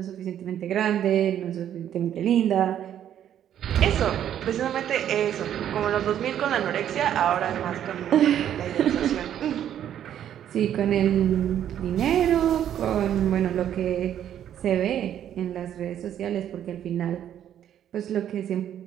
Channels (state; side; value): quieter; left; 10.4 dB